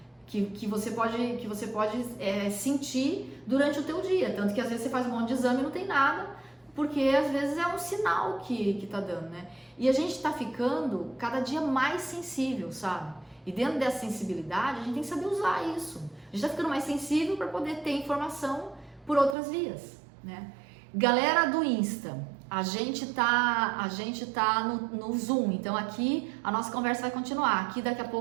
Que você pode sentir durante o teu dia. Tanto que às vezes você faz um monte de exame e não tem nada, porque às vezes é um sinal que tá dando, né? E a gente tá ficando cada dia mais sensível, sabe? E dentro dessa sensibilidade, a gente tem que saber usar isso. A gente tá ficando mais sensível para poder ter informação por outras vias, né? Galera do Insta, a gente tá no Zoom, então aqui a nossa conversa vai continuar. Aqui daqui a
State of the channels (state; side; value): drops out; left; at 19.4 s